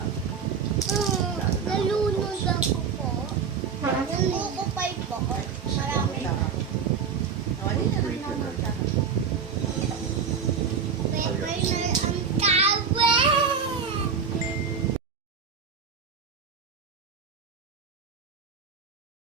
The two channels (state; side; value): quieter; left; 6.3 dB